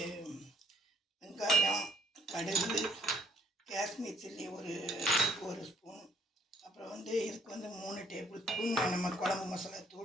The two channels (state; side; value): normal; both; correlation 0.66